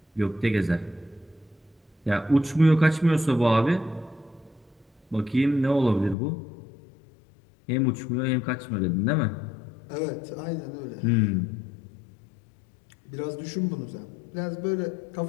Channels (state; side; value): drops out; right; at 6.2 s